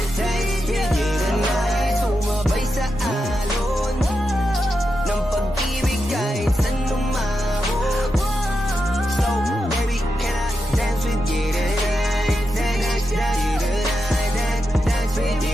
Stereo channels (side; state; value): both; normal; correlation 0.87